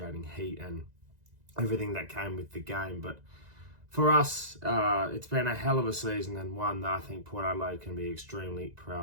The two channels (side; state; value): left; late; 2.0 ms